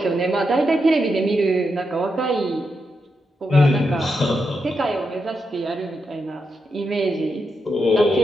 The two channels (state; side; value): normal; both; correlation 0.85